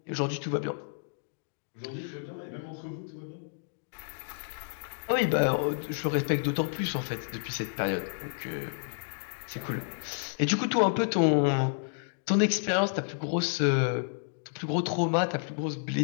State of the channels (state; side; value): silent; right; digital silence